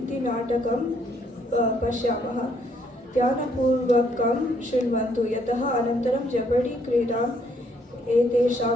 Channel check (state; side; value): normal; both; correlation 0.68